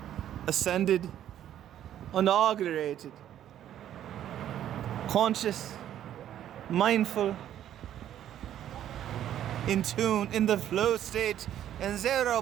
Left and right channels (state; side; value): quieter; left; 11.2 dB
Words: ascended, inaugurated, conscious, mindful, in tune, in the flow state, and 0